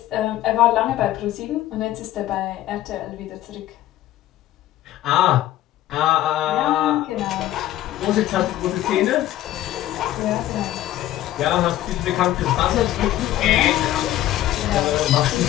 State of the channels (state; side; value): quieter; right; 14.0 dB